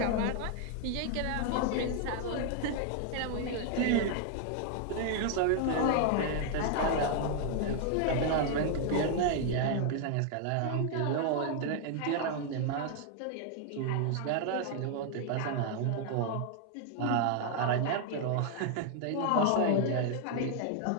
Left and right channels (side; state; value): both; different; correlation 0.00